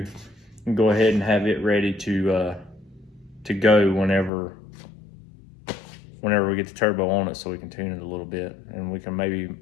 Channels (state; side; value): drops out; right; at 4.3 s